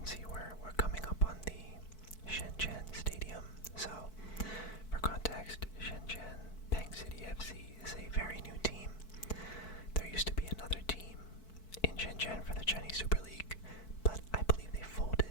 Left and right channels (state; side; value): late; right; 4.6 ms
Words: see we're coming up on the Shenzhen Stadium. So, for context, Shenzhen Peng City FC is a very new team. There used to be another team in Shenzhen for the Chinese Super League, but I believe they